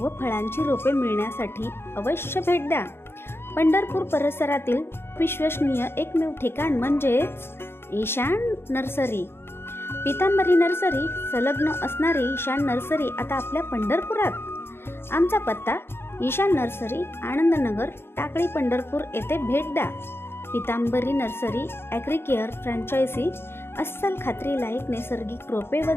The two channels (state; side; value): late; right; 0.11 ms